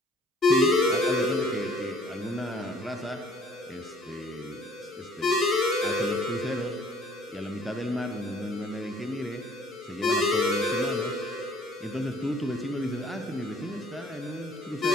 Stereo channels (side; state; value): both; normal; correlation 0.56